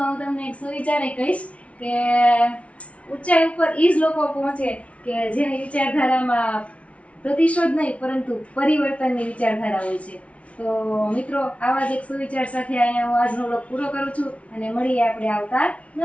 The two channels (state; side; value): late; right; 0.064 ms